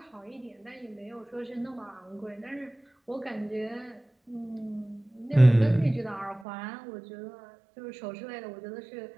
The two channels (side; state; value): left; drops out; at 6.5 s